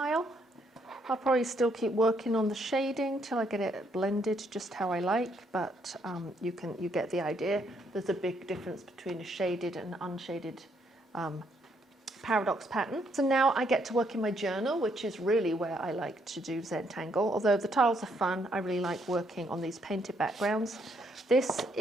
I'll probably still keep working on the shading till I get it blended just how I like, but you get the idea. There's a big difference between a shaded and unshaded paradox pattern. So now I get to work in my journal, which is really where I like to do Zentangle. Although the tiles are fun, I really like working on these painted backgrounds. This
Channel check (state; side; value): normal; both; correlation 0.72